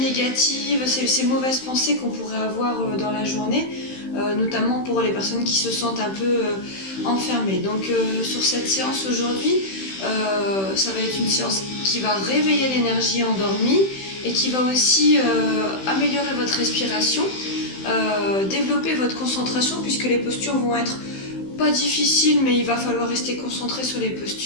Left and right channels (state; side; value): late; right; 16 ms